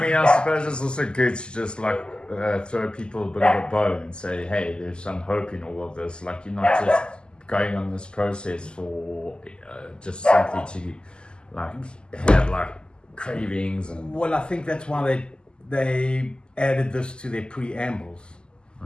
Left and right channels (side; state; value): right; late; 0.048 ms